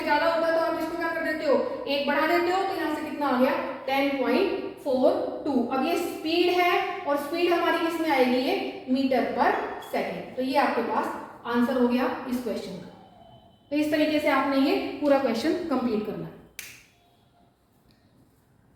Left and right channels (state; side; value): identical; both; correlation 1.00